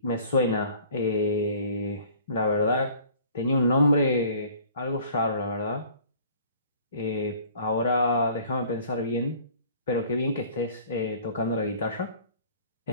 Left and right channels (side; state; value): both; inverted; correlation -0.50